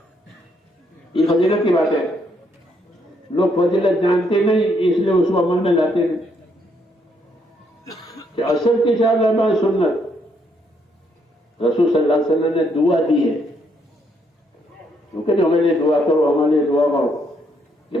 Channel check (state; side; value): normal; both; correlation 0.73